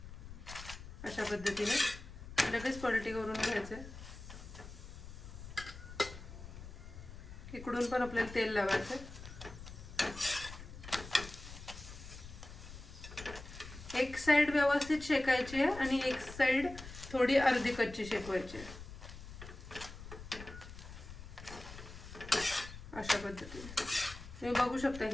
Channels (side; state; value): left; noise; rumble, 13 dB below the sound